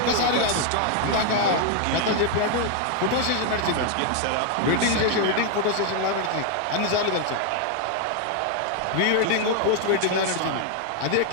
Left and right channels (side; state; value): both; different; correlation 0.00